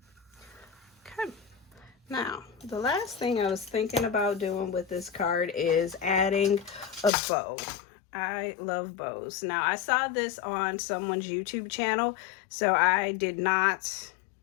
Now, the last thing I was thinking about doing with this card is adding a bow. I love bows. Now, I saw this on someone's YouTube channel, so I did not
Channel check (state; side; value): drops out; right; at 7.1 s